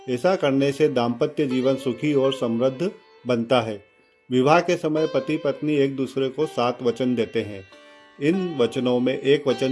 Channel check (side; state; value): both; identical; correlation 1.00